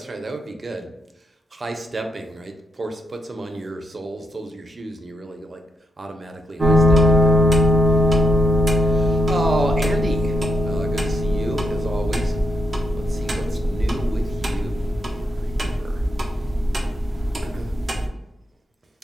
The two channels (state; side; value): normal; both; correlation 0.81